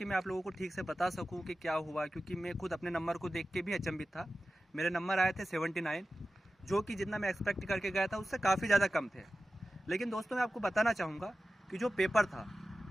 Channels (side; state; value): both; normal; correlation 0.94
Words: मैं आप लोगों को ठीक से बता सकूं कि क्या हुआ, क्योंकि मैं खुद अपने नंबर को देख के भी अचंभित था। मेरे नंबर आए थे 79, जो कि जितना मैं एक्सपेक्ट करके गया था उससे काफ़ी ज़्यादा कम थे। लेकिन दोस्तों, मैं आपको बताना चाहूँगा कि जो पेपर था